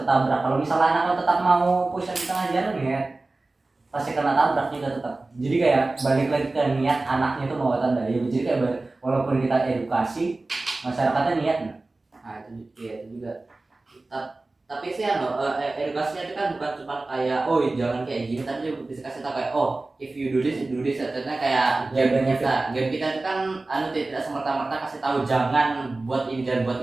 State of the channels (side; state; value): left; quieter; 3.2 dB